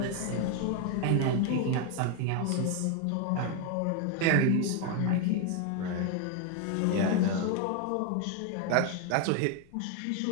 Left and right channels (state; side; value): different; both; correlation 0.01